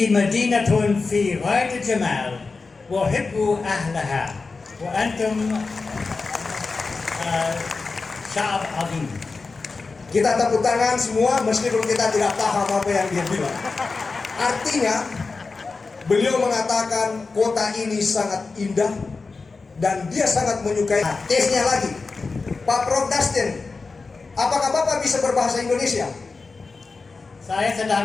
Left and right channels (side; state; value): right; quieter; 4.2 dB